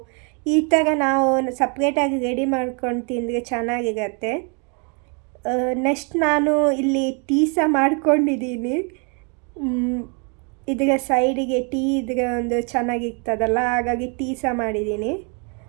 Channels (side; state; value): left; quieter; 36.2 dB